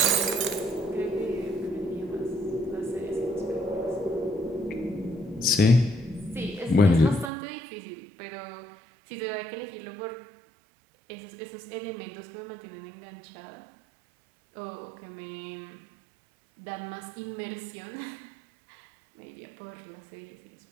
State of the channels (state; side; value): drops out; left; at 7.3 s